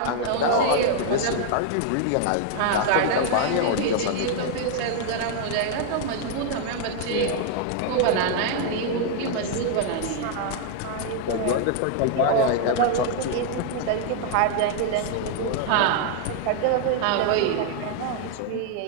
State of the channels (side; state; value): both; different; correlation 0.00